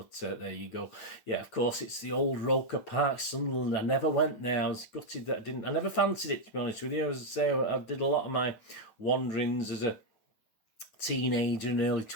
there you go. Yeah, of course, it's the old Roker Park, Sunderland. I never went there. I was gutted that I never fancied it, to be honest with you. As I say, I did a lot of my wanderings as a teenager and early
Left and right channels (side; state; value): right; late; 9.1 ms